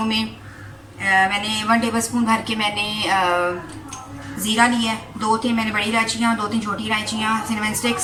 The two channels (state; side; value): identical; both; correlation 1.00